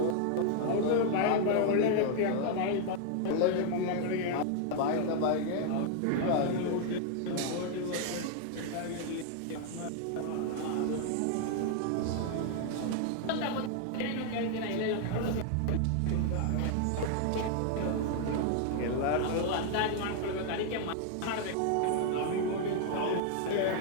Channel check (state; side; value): different; both; correlation 0.00